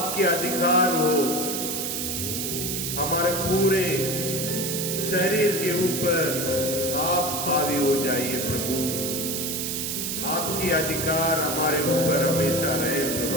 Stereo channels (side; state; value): right; noise; hiss, 2 dB below the sound